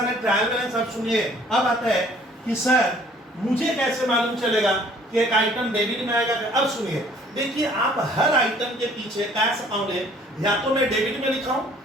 ट्रायल बैलेंस आप सुनिए। अब आता है कि सर मुझे कैसे मालूम चलेगा कि एक आइटम डेबिट में आएगा। अब सुनिए, देखिए आप हर आइटम के पीछे कैश अकाउंट है, या तो मैं डेबिट में लिखाऊं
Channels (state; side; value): normal; both; correlation 0.56